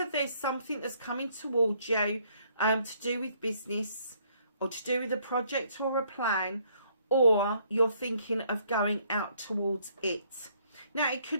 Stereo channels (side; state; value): both; inverted; correlation -0.66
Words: there's something that's coming towards you to do with business, or to do with a project or a plan, or you're thinking of going out towards it. Now, it